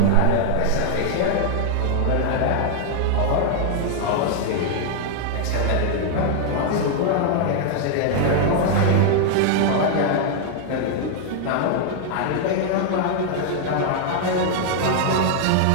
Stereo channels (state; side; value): different; both; correlation 0.00